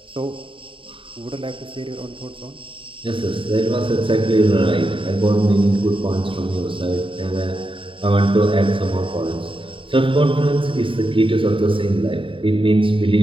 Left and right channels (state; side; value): late; left; 0.25 ms